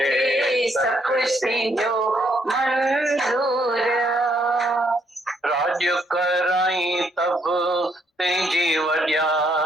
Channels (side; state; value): both; normal; correlation 0.72